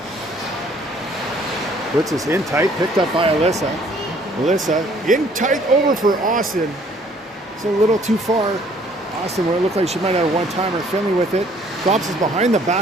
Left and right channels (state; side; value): normal; both; correlation 0.60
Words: puts us in tight, picked up by Alyssa. Alyssa in tight over for Austin. It's a little too far. Austin, where it looked like she might have a one-timer. Finley with it. Drops us behind the